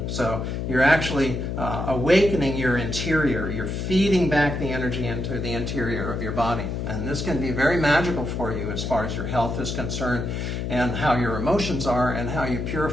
So you're actually awakening your interior. You're feeding back the energy into the interior of your body. And this can be very magical for you as far as your health is concerned, and how your emotions are, and how you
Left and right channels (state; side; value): noise; left; hum, 3 dB below the sound